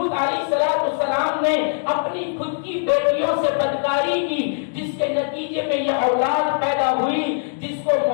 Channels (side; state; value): right; silent; digital silence